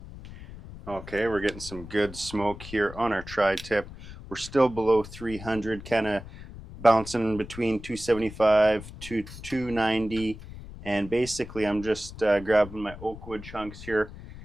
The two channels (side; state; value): left; noise; rumble, 14 dB below the sound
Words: Okay, we're getting some good smoke here on our tri-tip. We're still below 300, kind of bouncing between 275 to 290, and basically I'm just grabbing my oak wood chunks here,